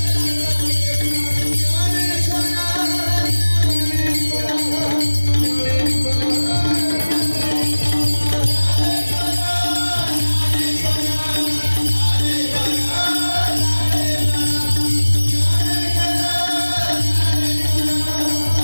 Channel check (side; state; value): both; inverted; correlation -1.00